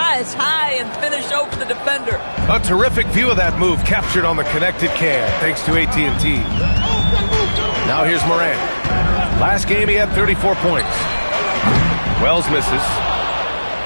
high and finish over the defender. A terrific view of that move captured on the connected cam, thanks to AT&T. Now here's Morant. Last game he had 34 points. Wells misses.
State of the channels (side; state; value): both; inverted; correlation -1.00